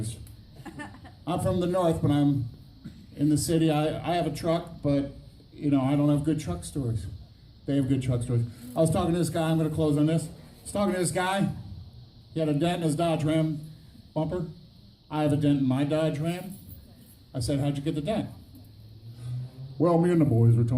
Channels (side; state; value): both; identical; correlation 1.00